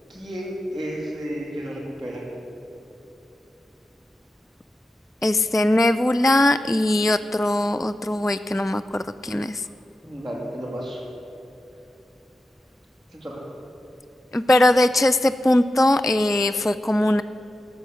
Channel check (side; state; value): both; normal; correlation 0.91